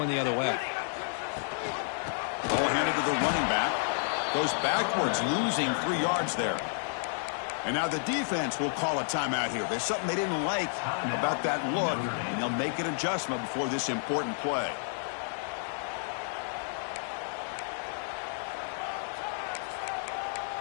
the other way. Ball handed to the running back. Goes backwards, losing 3 yards there. And now the defense will call a timeout here. There's something they didn't like about that look, and they'll make an adjustment before this important play.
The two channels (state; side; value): silent; right; digital silence